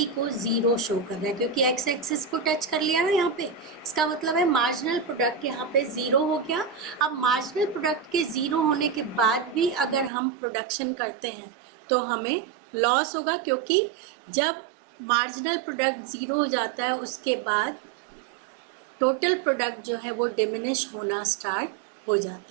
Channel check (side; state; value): left; drops out; at 10.1 s